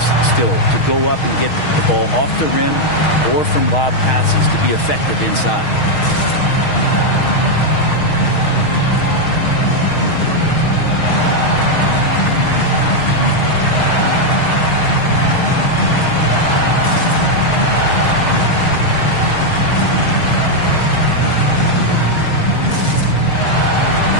still to go up and get the ball off the rim or from lob passes to be effective inside.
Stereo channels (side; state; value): right; late; 6.4 ms